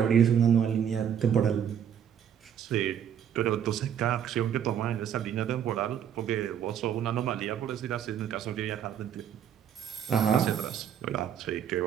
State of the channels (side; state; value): left; quieter; 8.9 dB